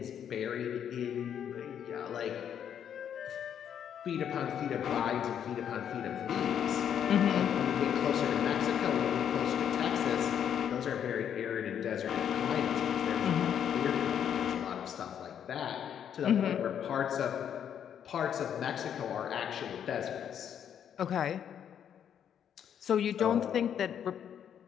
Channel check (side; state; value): right; quieter; 8.9 dB